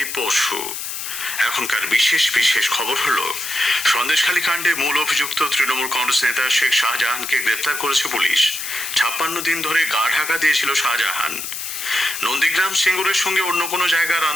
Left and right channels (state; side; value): noise; left; hiss, 6 dB below the sound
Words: বসু। এখনকার বিশেষ বিশেষ খবর হলো, সন্দেশখালী কাণ্ডে মূল অভিযুক্ত তৃণমূল কংগ্রেস নেতা শেখ শাহজাহানকে গ্রেপ্তার করেছে পুলিশ। 56 দিন ধরে গা ঢাকা দিয়েছিল শাহজাহান। নন্দীগ্রাম সিঙ্গুরের সঙ্গে অন্য কোনো জায়গার